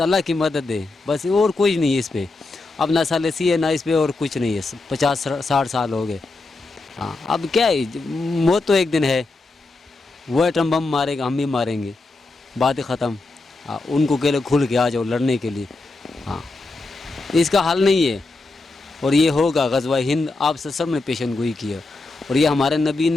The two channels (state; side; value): quieter; right; 3.3 dB